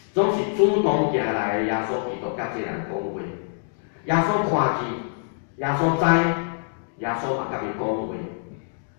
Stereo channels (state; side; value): silent; right; digital silence